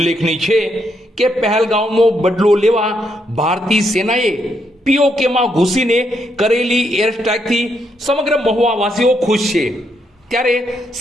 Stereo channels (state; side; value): normal; both; correlation 0.77